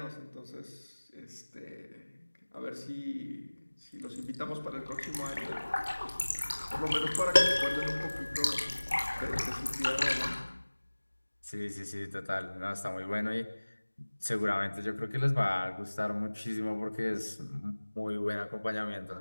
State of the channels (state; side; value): inverted; both; correlation -1.00